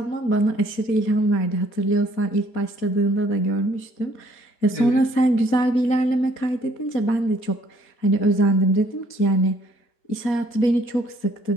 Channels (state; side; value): late; right; 4.2 ms